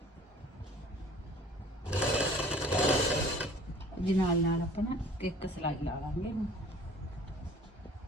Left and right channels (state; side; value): normal; both; correlation 0.48